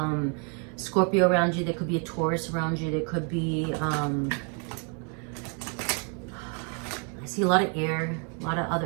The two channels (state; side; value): quieter; left; 39.4 dB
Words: Scorpio around you. There could be a Taurus around you. There could be, I see a lot of air, a lot of